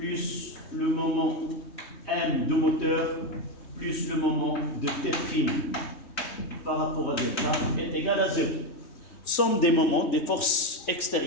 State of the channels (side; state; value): right; late; 3.2 ms